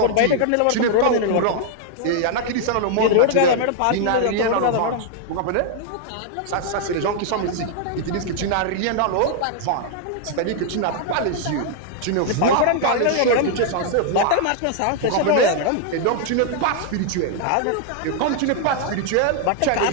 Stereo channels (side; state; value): both; different; correlation 0.00